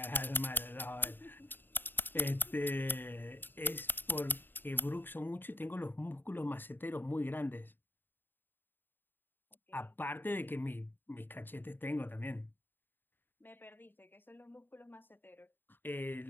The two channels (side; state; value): right; late; 0.094 ms